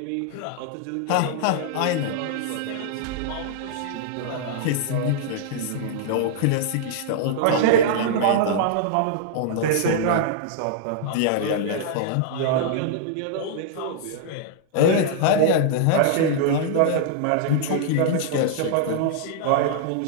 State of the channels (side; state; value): both; different; correlation -0.01